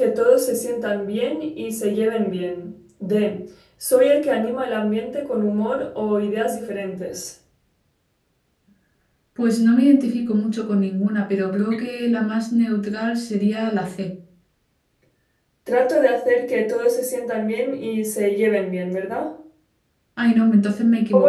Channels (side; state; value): both; identical; correlation 1.00